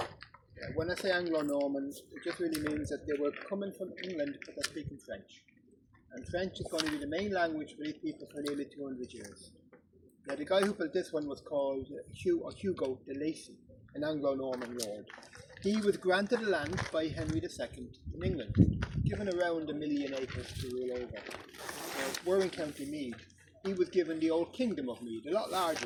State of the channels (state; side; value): identical; both; correlation 1.00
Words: When I say Anglo-Norman, it just really means that they were coming from England but they're speaking French. And French is going to be the main language for these people for nearly 200 years. Now the guy who built this one was called Hugo de Lacy, an Anglo-Norman lord. He was granted the land by Henry II in England, given around 1 million acres to rule over. We're in County Meath. He was given the old Kingdom of Meath, a lot